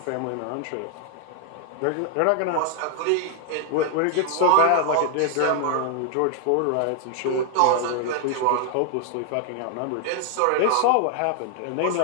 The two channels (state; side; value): different; both; correlation 0.00